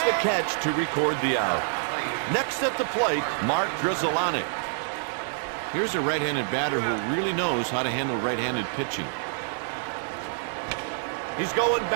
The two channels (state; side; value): silent; left; 60 dB below the other